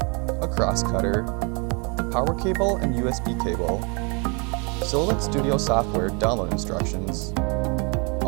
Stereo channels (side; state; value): left; quieter; 33.5 dB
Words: a cross cutter, the power cable and USB cable, Silhouette Studio software download instructions,